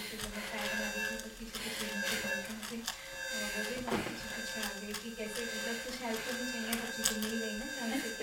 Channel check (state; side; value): identical; both; correlation 1.00